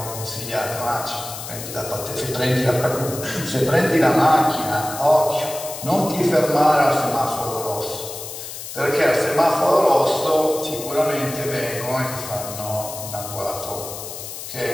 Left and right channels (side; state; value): left; noise; hiss, 10 dB below the sound